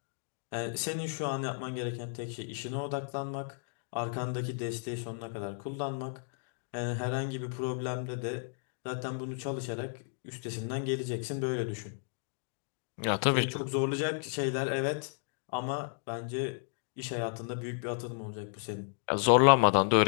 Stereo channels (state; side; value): silent; right; digital silence